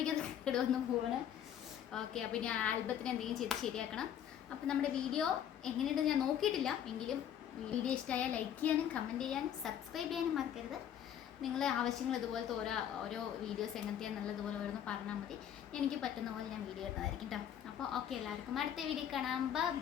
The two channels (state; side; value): quieter; right; 9.8 dB